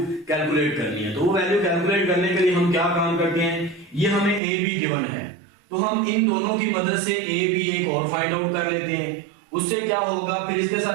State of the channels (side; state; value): left; drops out; at 4.4 s